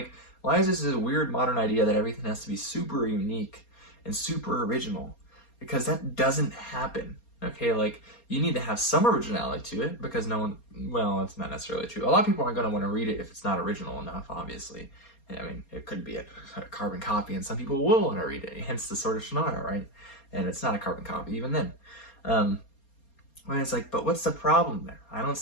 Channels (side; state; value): right; late; 4.3 ms